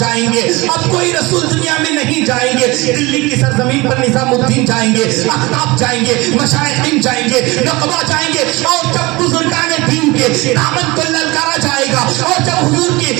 گے، اب کوئی رسول دنیا میں نہیں جائیں گے، دلی کی سرزمین پر نظام الدین جائیں گے، احتاب جائیں گے، مشائخین جائیں گے، نقبہ جائیں گے، اور جب بزرگان دین کے دامن کو للکارا جائے گا، اور جب حضور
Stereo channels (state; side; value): quieter; left; 22.9 dB